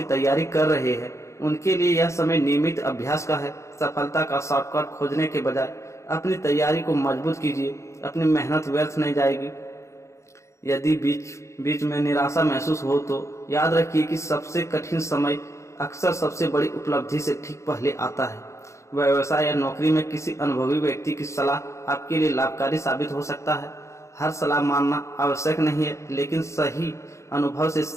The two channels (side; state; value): right; late; 0.14 ms